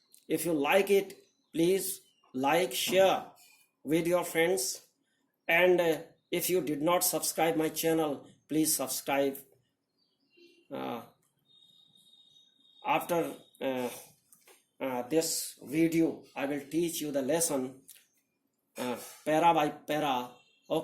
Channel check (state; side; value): identical; both; correlation 1.00